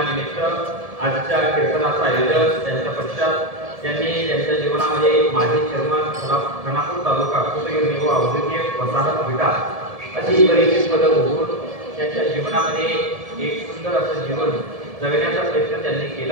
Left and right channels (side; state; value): left; late; 1.7 ms